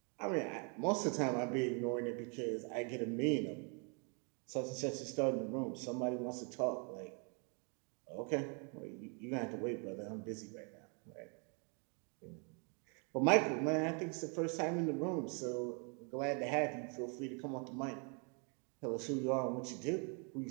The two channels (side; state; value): left; quieter; 37.0 dB